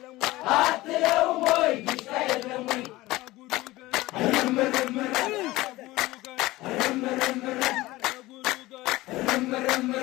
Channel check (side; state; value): right; quieter; 18.8 dB